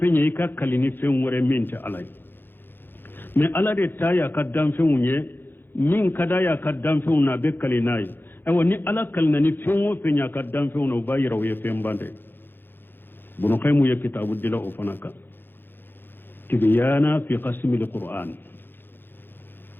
ye i ka kalini fɛn wɛrɛ min tɛ ala ye mɛ ala de ta y'a ka danfɛnw ye min ka d'a y'a ka danfɛnw na a bɛ kali n'a ye ayiwa ni ala kalina ni fɛn o fɛn y'a ka danfɛnw na o b'a yira o ye fɛn ban dɛ bunukaimu ye kitabu dila o fana kan tibyana fi qasimil qur'an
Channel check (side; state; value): right; late; 0.10 ms